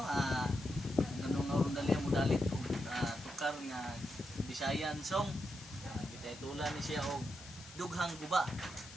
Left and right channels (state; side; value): noise; left; hiss, 16 dB below the sound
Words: Ganung nga dali mo dalit og tukar nga Bisayan song. Bitay tulan ni siya og dughang guba.